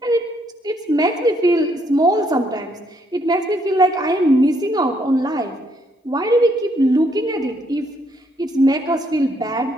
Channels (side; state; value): both; normal; correlation 0.71